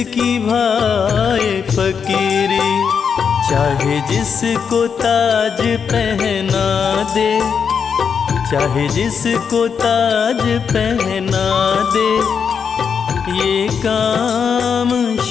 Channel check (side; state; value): right; quieter; 6.6 dB